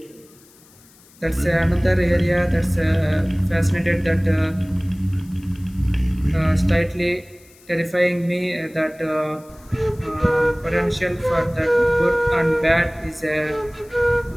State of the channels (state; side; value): noise; left; hiss, 27 dB below the sound